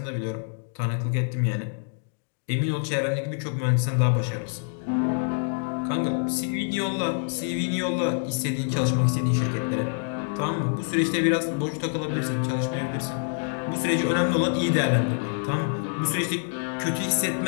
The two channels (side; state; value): right; silent; digital silence